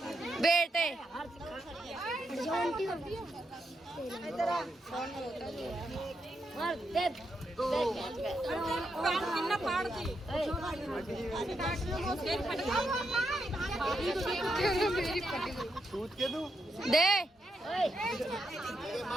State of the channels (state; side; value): normal; both; correlation 0.82